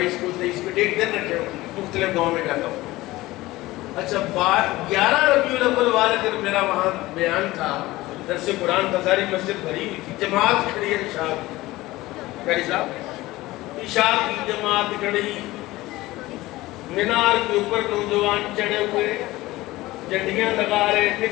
کو، 23 کو، ڈیٹ دن رکھے ہوں، مختلف گاؤں میں جاتا ہوں. اچھا 11 ربیع الاول والے دن میرا وہاں بیان تھا، درس قرآن کا، ساری مسجد بھری ہوئی تھی، جماعت کھڑی ہے. عشاء قاری صاحب عشاء کی جماعت کھڑی، مینار کے اوپر نوجوان چڑھے ہوئے، جھنڈیاں لگا رہے،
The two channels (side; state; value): right; quieter; 18.5 dB